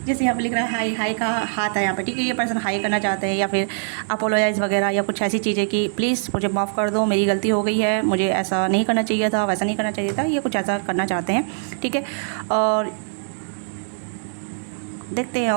जैसे यहाँ पे लिख रहा है हाई, हाई का हाथ है यहाँ पे, ठीक है। ये पर्सन हाई करना चाहते हैं, या फिर अपोलोजाइज़ वगैरह, या कुछ ऐसी चीज़ें कि प्लीज़ मुझे माफ़ कर दो, मेरी गलती हो गई है, मुझे ऐसा नहीं करना चाहिए था, वैसा नहीं करना चाहिए था, ये कुछ ऐसा करना चाहते हैं, ठीक है। और देखते हैं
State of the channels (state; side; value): silent; left; digital silence